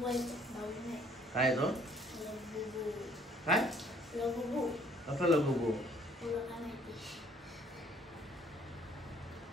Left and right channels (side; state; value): both; normal; correlation 0.59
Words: काय तो काय कसं लगुबू